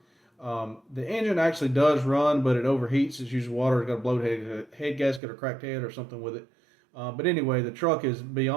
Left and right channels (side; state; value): left; drops out; at 5.2 s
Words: The engine actually does run, but it overheats. It's usually water. It's got a blown head gasket or cracked head or something with it. But anyway, the truck is